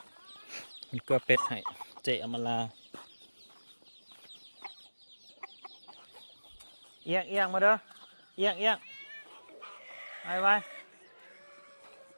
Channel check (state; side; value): inverted; both; correlation -1.00